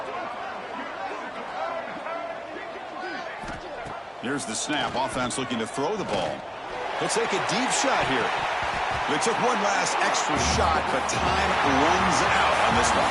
Here's the snap. Offense looking to throw the ball. He'll take a deep shot here. They took one last extra shot, but time runs out on this one.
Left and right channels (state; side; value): identical; both; correlation 1.00